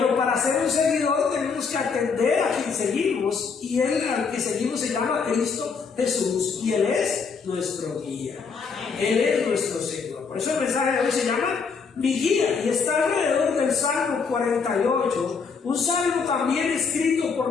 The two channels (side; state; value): right; quieter; 5.4 dB